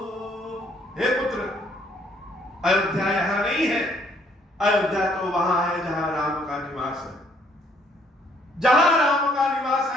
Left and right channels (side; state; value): both; normal; correlation 0.65